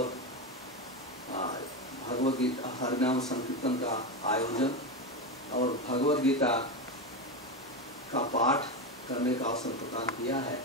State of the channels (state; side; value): normal; both; correlation 0.15